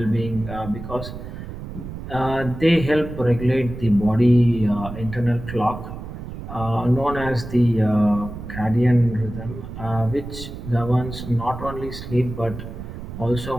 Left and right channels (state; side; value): noise; right; rumble, 10 dB below the sound